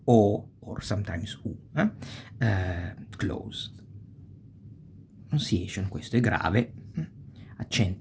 o or sometimes u, closed. Pronunciation, questo è grave,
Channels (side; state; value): both; identical; correlation 1.00